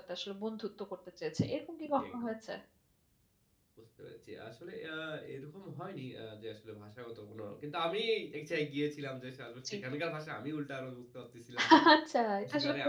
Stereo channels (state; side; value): identical; both; correlation 1.00